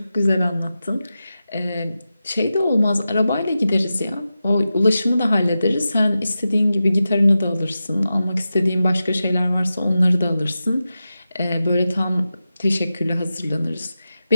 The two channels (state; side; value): inverted; both; correlation -0.92